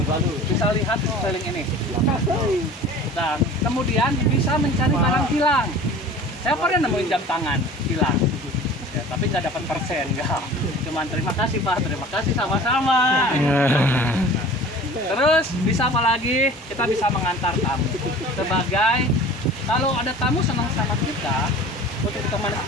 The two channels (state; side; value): normal; both; correlation 0.43